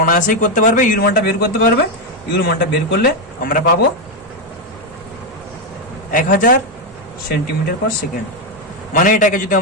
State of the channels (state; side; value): noise; right; hum, 25 dB below the sound